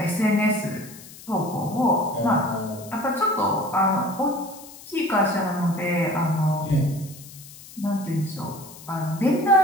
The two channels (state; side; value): noise; left; hiss, 18 dB below the sound